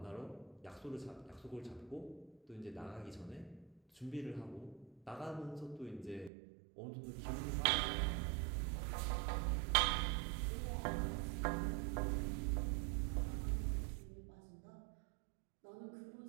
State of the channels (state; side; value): drops out; left; at 6.3 s